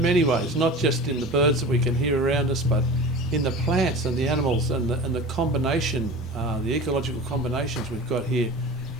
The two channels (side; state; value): both; normal; correlation 0.35